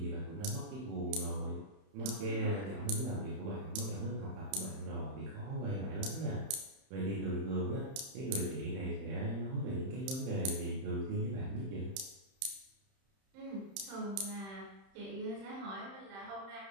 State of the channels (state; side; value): late; left; 31 ms